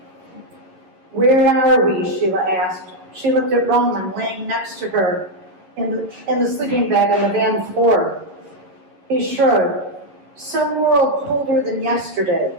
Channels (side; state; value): left; late; 11 ms